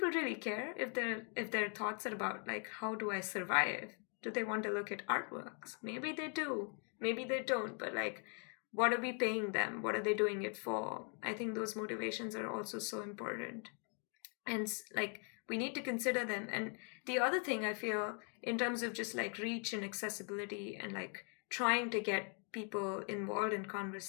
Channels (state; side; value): quieter; right; 39.6 dB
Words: really care if their thoughts are about like, how do I survive? Do they want to look at artworks? Maybe they do, maybe they don't, but like, what are we paying them? What are they doing it for? I think those motivations are also so important. And like, we need to consider them. And the other thing I feel in terms of just like reach and accessibility and like trying to get people involved in